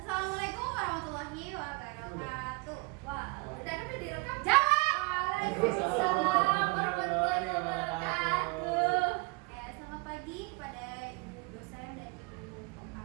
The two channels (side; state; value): left; quieter; 28.5 dB